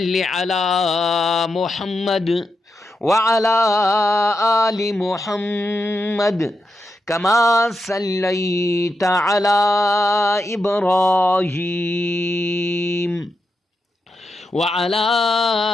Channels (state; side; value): normal; both; correlation 0.86